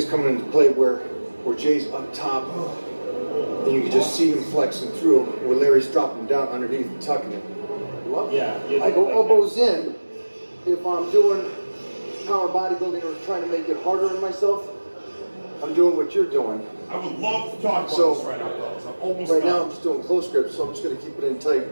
coming into play where Jay's up top, and you can just see him flexing through, where Larry's dropping down underneath and tucking it. Yeah. I go elbows in if I'm doing power bodybuilding or trying to make it harder on myself. I'm doing what you're doing. I would love to talk about this right now, fellas. I'm almost Right done. now I'm just doing close grips, so I'm just going to keep it in tight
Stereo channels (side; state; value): both; inverted; correlation -1.00